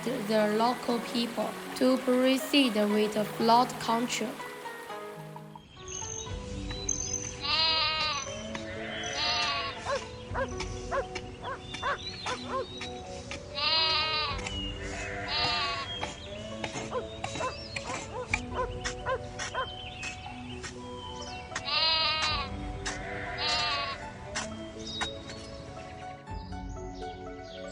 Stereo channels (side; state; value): both; identical; correlation 1.00